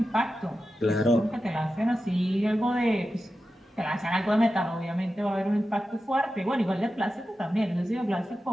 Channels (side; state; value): both; normal; correlation 0.92